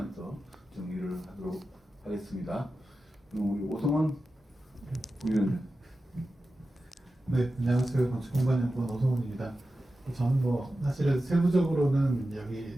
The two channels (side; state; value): both; normal; correlation 0.93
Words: 정리를 하도록 하겠습니다. 그럼 우리 오성원 부위원님. 네, 안녕하세요. 건축공간연구원 오성훈입니다. 저는 뭐 사실은 세부적으로는 여기